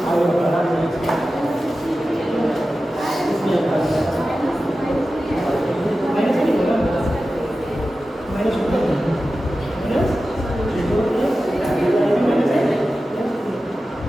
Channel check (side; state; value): both; normal; correlation 0.94